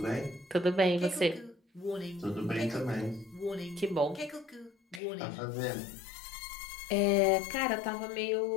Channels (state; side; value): drops out; right; at 5.0 s